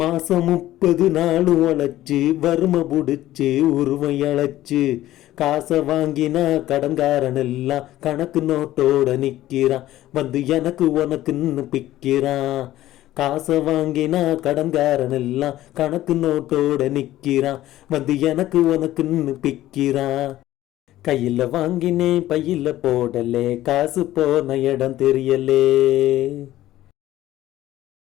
30 நாள் உழைச்சு வறுமை புடிச்சு உருவம் இழைச்சு காசை வாங்கினா கடன்காரன் எல்லாம் கணக்கு நோட்டோட நிற்கிறான். வந்து எனக்கு உனக்குன்னு பிக்கிறான். காசை வாங்கினா கடன்காரன் எல்லாம் கணக்கு நோட்டோட நிற்கிறான். வந்து எனக்கு உனக்குன்னு பிக்கிறான். கையில் வாங்கினேன் பையில் போடலே காசு போன இடம் தெரியலே.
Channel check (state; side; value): quieter; right; 14.6 dB